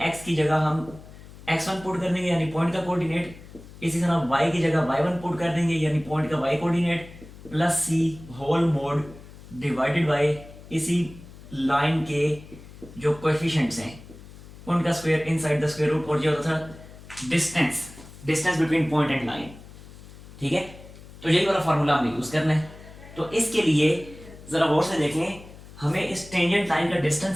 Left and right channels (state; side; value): noise; left; hum, 18 dB below the sound